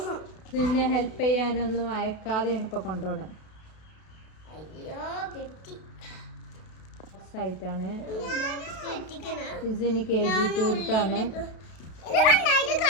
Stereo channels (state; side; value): late; right; 32 ms